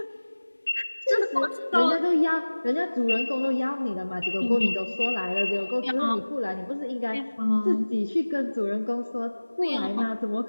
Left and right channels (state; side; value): inverted; both; correlation -1.00